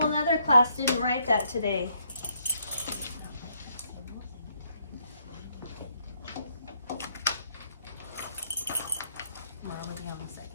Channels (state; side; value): inverted; both; correlation -0.72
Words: in other class didn't write that today.